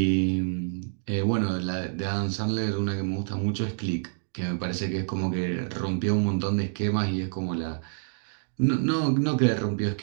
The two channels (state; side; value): silent; left; digital silence